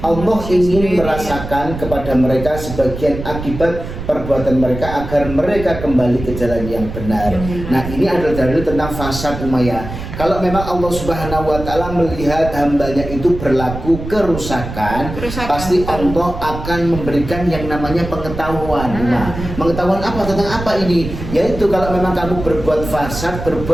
ingin merasakan kepada mereka sebagian akibat perbuatan mereka agar mereka kembali ke jalan yang benar. Nah, ini adalah dalil tentang fasad Umayyah. Kalau memang Allah Subhanahu wa taala melihat hambanya itu berlaku kerusakan, pasti Allah akan memberikan yang namanya pengetahuan. Nah, pengetahuan apa tentang apa ini? Yaitu kalau memang kamu berbuat fasad,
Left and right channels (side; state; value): right; noise; rumble, 8 dB below the sound